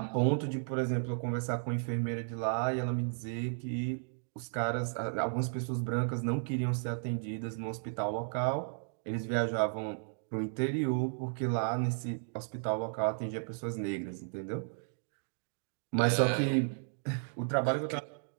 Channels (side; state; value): left; silent; digital silence